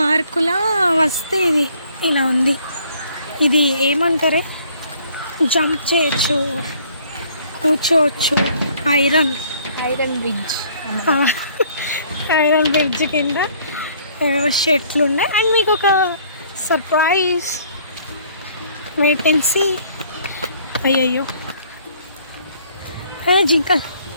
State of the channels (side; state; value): both; inverted; correlation -0.59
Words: వస్తే ఇది ఇలా ఉంది. ఇది ఏమంటారే, జంప్ చేయొచ్చు, కూర్చోవచ్చు. ఐరన్ బ్రిడ్జ్, ఐరన్ బ్రిడ్జ్ కింద షెట్లు ఉన్నాయి. అండ్ మీకు ఒక సర్ప్రైజ్, వేకెన్సీ. అయ్యయ్యో జింకల్